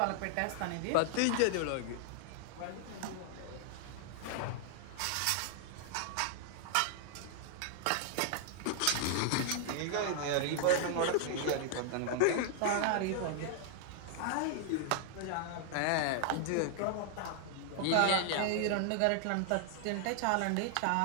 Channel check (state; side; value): different; both; correlation 0.00